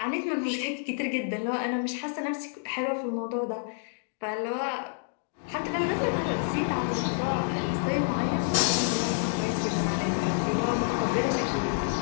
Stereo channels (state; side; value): silent; right; digital silence